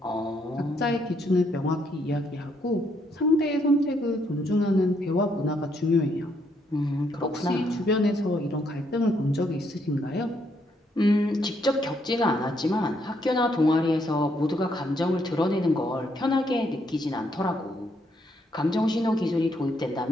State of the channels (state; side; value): normal; both; correlation 0.73